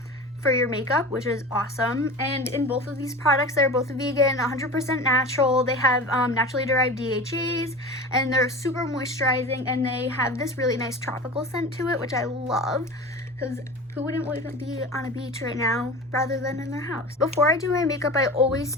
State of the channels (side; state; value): both; normal; correlation 0.33